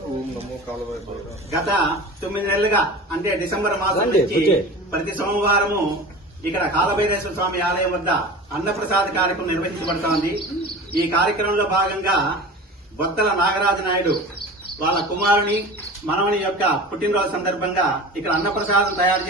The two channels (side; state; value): both; normal; correlation 0.35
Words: గత 9 నెలలుగా అంటే డిసెంబర్ మాసం నుంచి ప్రతి సోమవారము ఇక్కడ కాలభైరేశ్వర స్వామి ఆలయం వద్ద అన్నప్రసాద కార్యక్రమం నిర్వహించబడుతోంది. ఈ కార్యక్రమంలో భాగంగా బొత్తల నాగరాజు నాయుడు వాళ్ళ కుమారుని మనవని యొక్క పుట్టినరోజు సందర్భంగా ఇక్కడ అన్నప్రసాదం తయారు